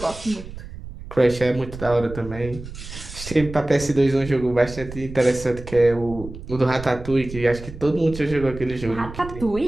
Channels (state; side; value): noise; right; rumble, 13 dB below the sound